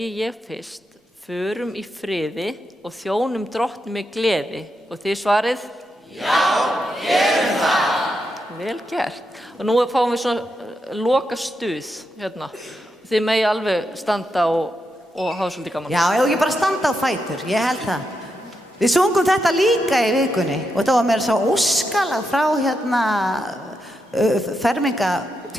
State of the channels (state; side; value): normal; both; correlation 0.84